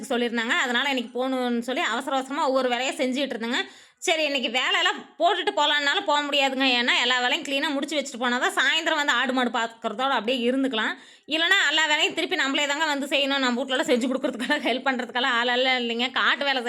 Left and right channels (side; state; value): both; identical; correlation 1.00